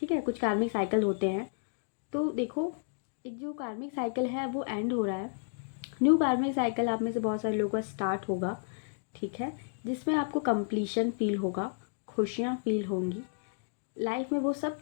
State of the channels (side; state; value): right; silent; digital silence